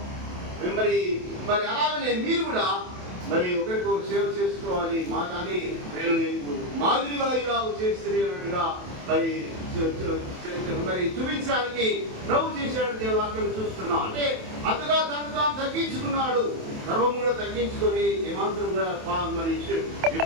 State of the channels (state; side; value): late; left; 27 ms